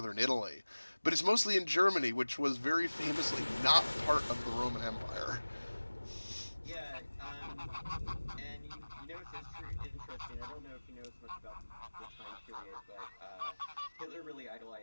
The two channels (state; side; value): inverted; both; correlation -1.00